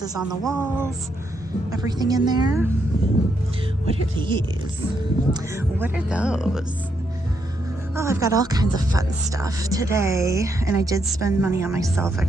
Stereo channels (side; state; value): both; normal; correlation 0.78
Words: on the walls, everything in there. What are these? What are those? Oh, I've got all kinds of fun stuff today, and I did spend money on myself. I